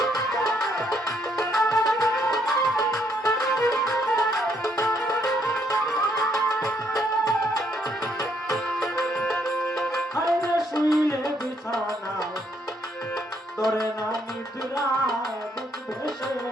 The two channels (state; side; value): normal; both; correlation 0.71